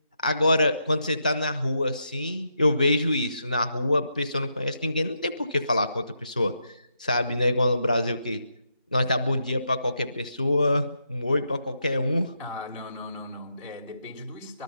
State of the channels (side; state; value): both; inverted; correlation -0.81